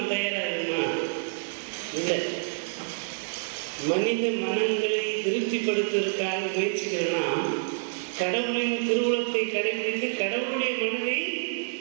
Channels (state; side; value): silent; left; digital silence